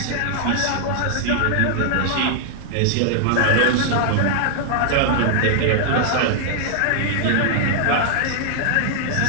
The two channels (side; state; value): both; different; correlation -0.01